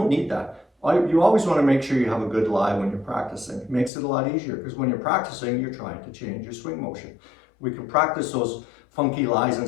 need that. You always want to make sure you have a good lie when you're practicing. It makes it a lot easier because when you're practicing, you're trying to change your swing motion. We can practice those funky lies and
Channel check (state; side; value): drops out; right; at 3.9 s